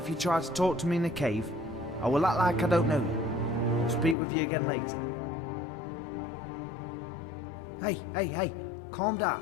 you try to talk to me in the cave, I will act like I don't know you. I'll speak with you again later. Hey, calm down.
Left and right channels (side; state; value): right; drops out; at 4.2 s